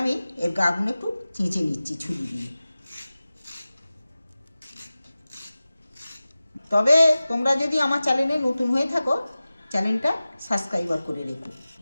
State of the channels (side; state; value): both; inverted; correlation -0.97